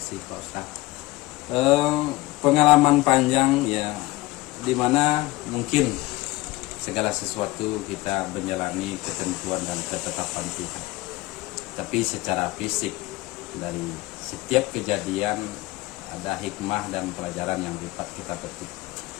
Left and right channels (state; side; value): quieter; right; 19.9 dB